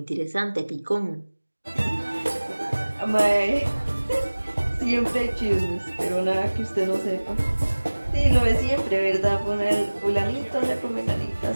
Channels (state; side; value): inverted; both; correlation -1.00